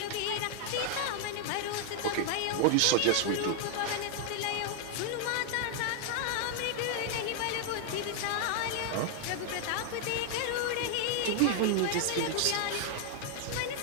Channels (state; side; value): different; both; correlation 0.00